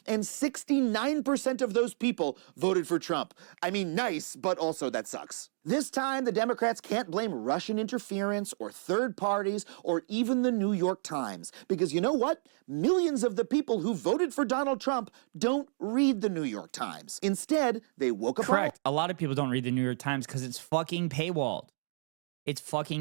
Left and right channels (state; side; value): silent; left; digital silence